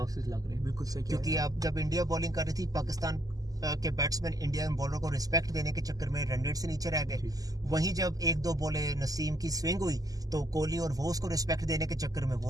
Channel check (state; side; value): late; left; 0.17 ms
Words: लग रहे हैं। बिल्कुल सही, क्योंकि अब जब इंडिया बॉलिंग कर रही थी, पाकिस्तान के बैट्समैन इंडिया बॉलर को रिस्पेक्ट देने के चक्कर में रन रेट से नीचे रह गए। वहीं जब 1-2 बॉलें नसीम की स्विंग हुई तो कोहली और वो उसको रिस्पेक्ट देने के चक्कर में